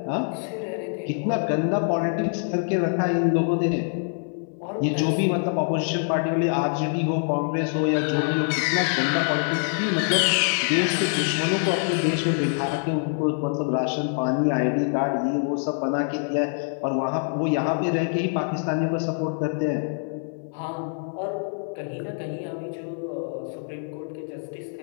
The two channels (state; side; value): silent; right; 62 dB below the other